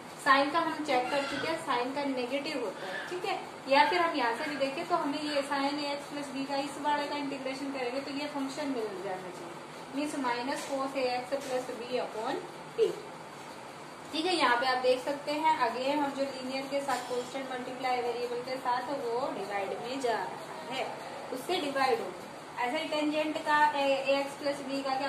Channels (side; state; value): both; identical; correlation 1.00